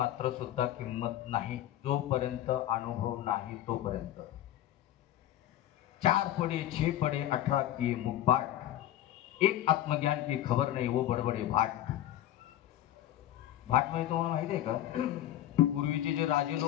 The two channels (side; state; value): right; quieter; 12.8 dB